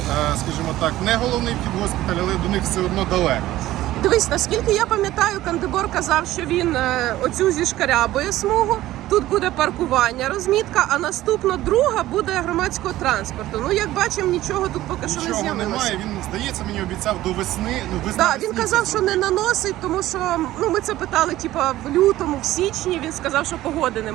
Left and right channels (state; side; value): quieter; left; 15.3 dB